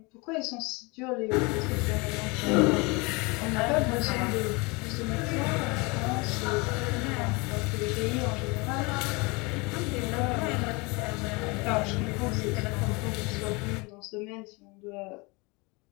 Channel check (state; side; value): quieter; right; 27.2 dB